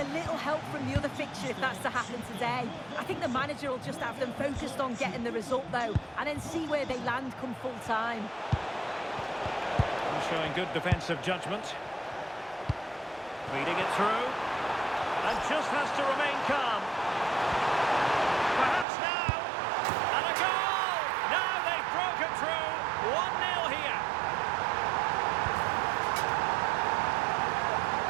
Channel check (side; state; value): left; drops out; at 18.9 s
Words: little help from the other fixture if that's to happen today. I think the manager will just have them focused on getting the result, though, and then see where they land come full time. Showing good defensive judgment. Feeding it through. And just has to remain calm. Perhaps now. And a goal! Now they've broken through. 1-0 here.